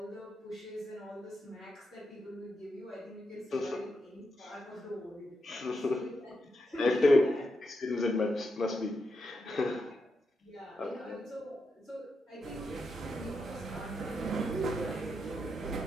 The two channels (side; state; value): both; normal; correlation 0.84